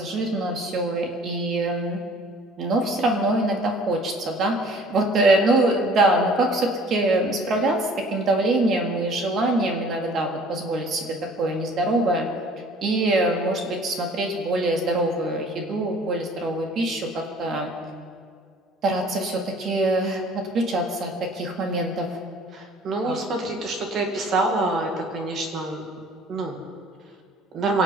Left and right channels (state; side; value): normal; both; correlation 0.51